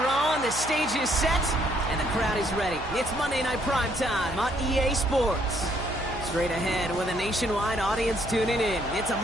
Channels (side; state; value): right; noise; hum, 12 dB below the sound